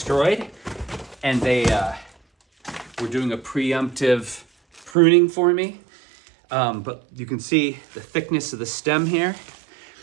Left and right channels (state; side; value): drops out; left; at 4.9 s